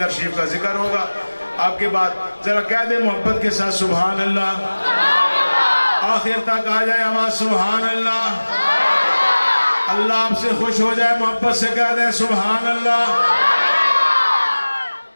شریف کا ذکر ہوگا۔ آپ کے بعد ذرا کہہ دیں محبت کے ساتھ سبحان اللہ، آخر تک آ جائے آواز سبحان اللہ، اللہ آپ سے خوش ہو جائے، محبت سے کہہ دیں سبحان اللہ۔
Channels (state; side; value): inverted; both; correlation -1.00